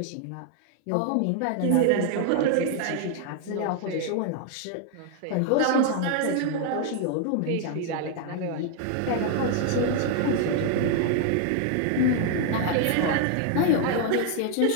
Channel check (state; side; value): different; both; correlation 0.00